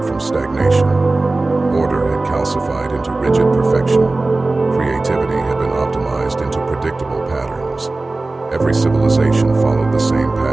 from stagnation. Order had calcified into rigid perfection. Creativity had been optimized into predictable patterns. Every civilization followed the same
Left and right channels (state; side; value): quieter; left; 3.2 dB